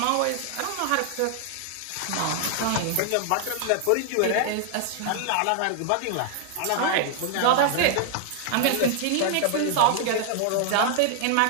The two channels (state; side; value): different; both; correlation 0.00